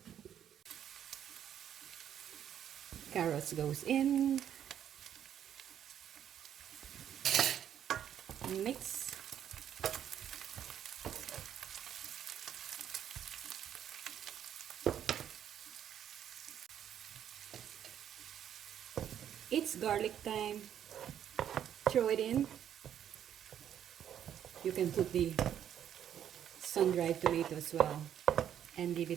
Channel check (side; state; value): left; quieter; 9.8 dB